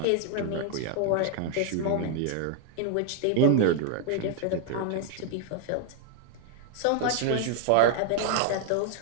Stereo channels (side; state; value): both; different; correlation 0.00